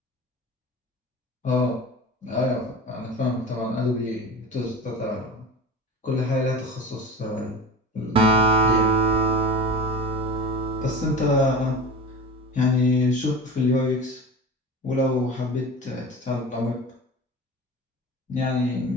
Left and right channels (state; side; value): normal; both; correlation 0.33